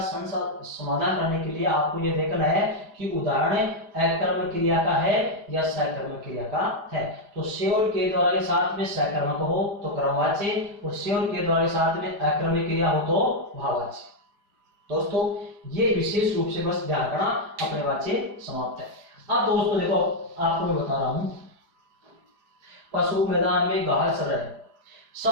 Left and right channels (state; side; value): late; left; 4.9 ms